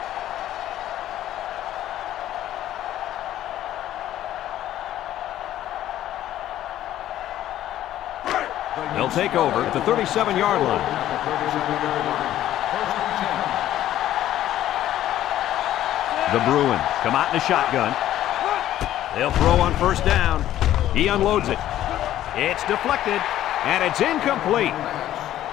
They'll take over at the 37-yard line. The Bruins come out in a shotgun. They'll throw on first down. He unloads it. It's deflected, and it's incomplete.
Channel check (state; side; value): quieter; right; 12.7 dB